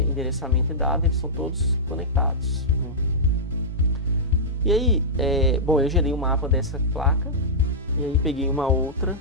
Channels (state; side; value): normal; both; correlation -0.12